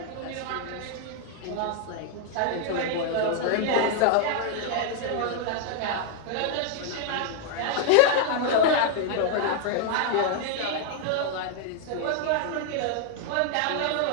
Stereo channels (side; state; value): both; different; correlation 0.00